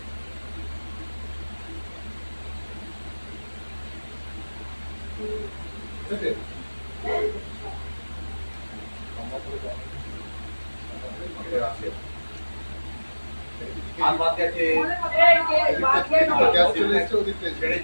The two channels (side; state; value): both; inverted; correlation -1.00